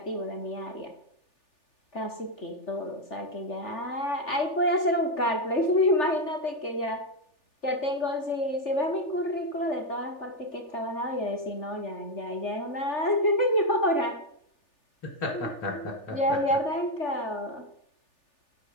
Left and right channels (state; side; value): late; right; 3.4 ms